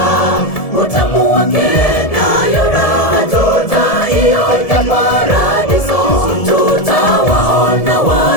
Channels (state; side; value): late; right; 1.7 ms